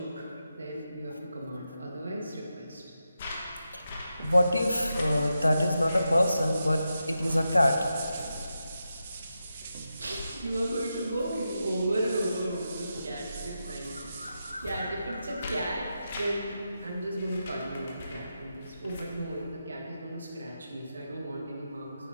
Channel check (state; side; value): inverted; both; correlation -0.88